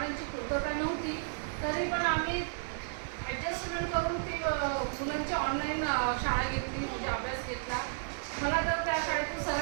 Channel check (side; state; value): left; silent; digital silence